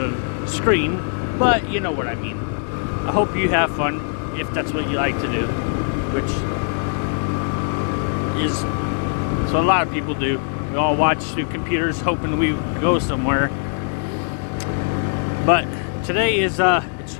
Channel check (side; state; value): right; silent; 65 dB below the other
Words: a screen, but you know what I mean. I hope you have fun if that's what you like to do, which is so a lot of people do. We all watch through computers hoping we go somewhere. But today is it's